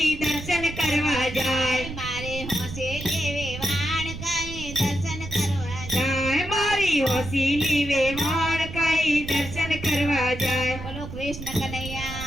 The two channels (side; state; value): right; noise; rumble, 10 dB below the sound